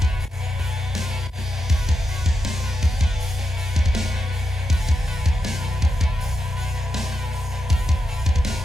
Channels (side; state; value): both; normal; correlation 0.86